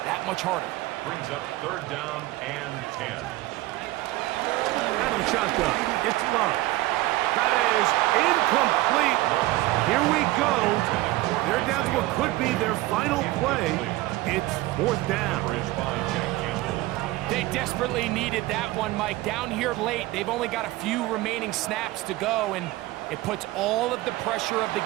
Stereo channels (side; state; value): left; quieter; 18.3 dB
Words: that much harder. Brings up 3rd down and 10. Out of the shotgun, it's Love. That is incomplete. Here we go. They're down to what could be their final play. It's 4th down. They desperately needed that one, Mike. Down here late, they've only got a few remaining snaps to go, and it puts all of the pressure of the